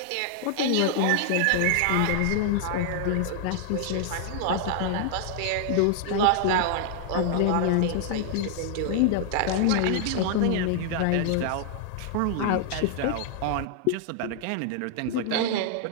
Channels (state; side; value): different; both; correlation 0.00